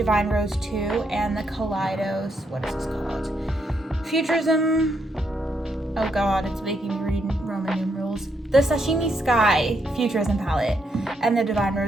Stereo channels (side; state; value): both; normal; correlation 0.77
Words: Rose 2 and the Kaleidos, what is this called? Futurism, oh god, it's making me read Roman numerals. The Sashimi Sky Futurism palette and the Divine